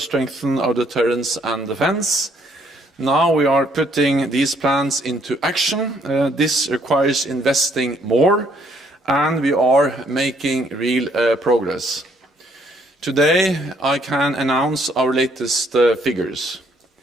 our deterrence and defense. Now we are putting these plans into action. This requires investing more, and we are making real progress. Today, I can announce our latest figures.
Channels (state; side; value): normal; both; correlation 0.67